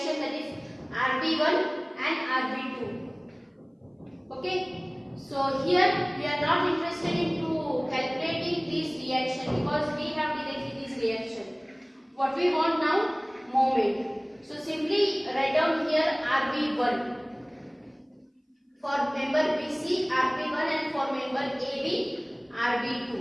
that is RB1 and RB2. Okay, so here we are not interested into calculating this reaction because we have directly this reaction. What we want now? Moment. So simply write down here RB1. For member BC, RB1, and for member AB,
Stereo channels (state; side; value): identical; both; correlation 1.00